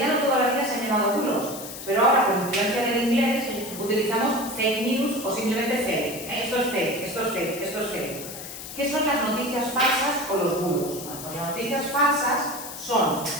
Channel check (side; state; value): left; noise; hiss, 11 dB below the sound